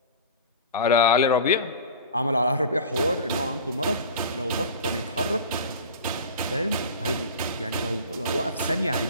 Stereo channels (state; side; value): inverted; both; correlation -0.36